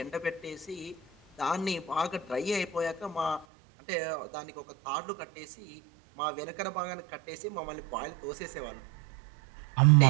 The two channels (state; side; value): drops out; left; at 3.5 s